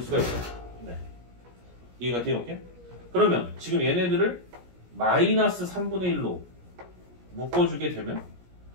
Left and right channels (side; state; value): left; late; 17 ms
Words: 수가 있어요. 네. 이해가 돼요? 오케이? 그러면 지금 얘네들을 마이너스 3분의 1로 묶어주게 되면